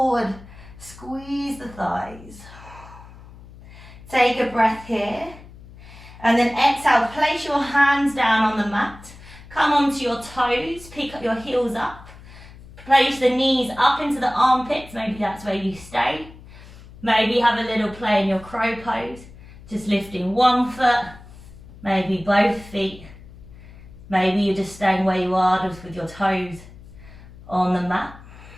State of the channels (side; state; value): left; noise; hum, 19 dB below the sound